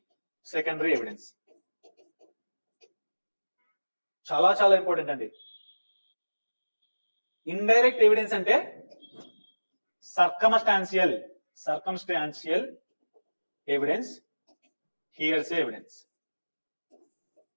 secondary evidence. చాలా చాలా important అండి. Indirect evidence అంటే సర్కమ్స్టాన్షియల్ ఎవిడెన్స్, హియర్సే ఎవిడెన్స్.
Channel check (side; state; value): both; inverted; correlation -1.00